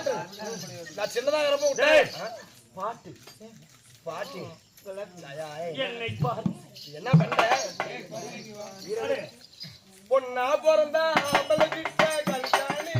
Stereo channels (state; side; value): identical; both; correlation 1.00